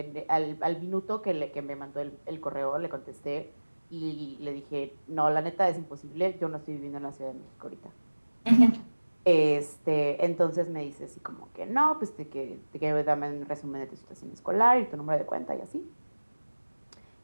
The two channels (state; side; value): inverted; both; correlation -1.00